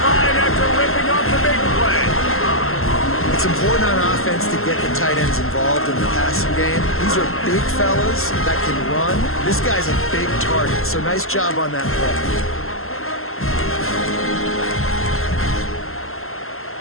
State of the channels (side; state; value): right; late; 0.62 ms